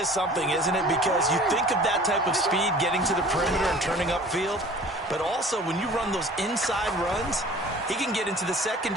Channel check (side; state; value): both; normal; correlation 0.46